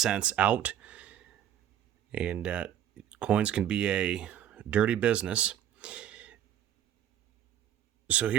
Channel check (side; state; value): left; quieter; 10.6 dB